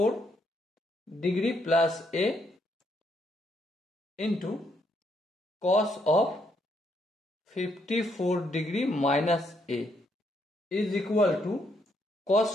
degree plus a into cos of 54 degree minus a is equal to cos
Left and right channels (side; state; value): both; normal; correlation 0.74